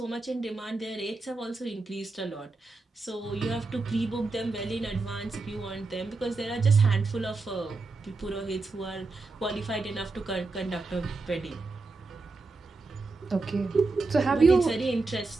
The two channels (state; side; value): quieter; left; 3.6 dB